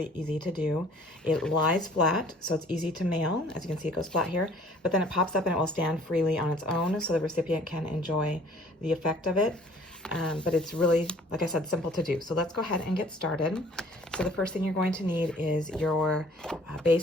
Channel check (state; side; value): normal; both; correlation 0.54